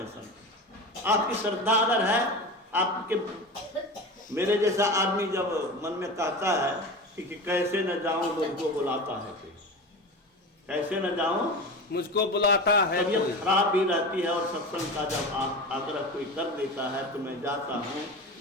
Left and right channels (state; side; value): normal; both; correlation 0.28